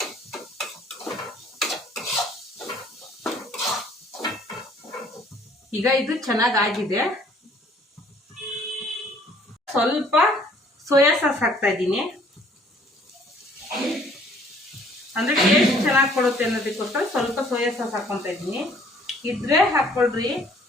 ಈಗ ಇದು ಚೆನ್ನಾಗಾಗಿದೆ. ಸ್ವಲ್ಪ ಸೋಯಾ ಸಾಸ್ ಹಾಕ್ತಾ ಇದ್ದೀನಿ. ಅಂದರೆ ಟೇಸ್ಟ್ ಚೆನ್ನಾಗಿ ಕೊಡುತ್ತೆ ಅನ್ನೋದಕ್ಕೋಸ್ಕರ ಸ್ವಲ್ಪ ಸೋಯಾ ಸಾಸ್ ಹಾಕ್ಕೊತಾ ಇದ್ದೀನಿ. ಇದ್ರೆ ಹಾಕ್ಕೊಳ್ರಿ,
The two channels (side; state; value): both; normal; correlation 0.58